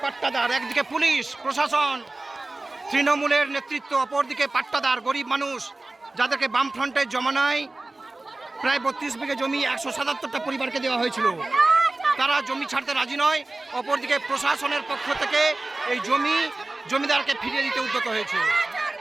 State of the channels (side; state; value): left; quieter; 3.0 dB